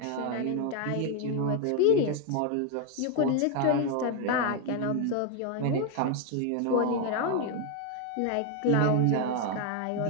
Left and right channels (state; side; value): different; both; correlation 0.01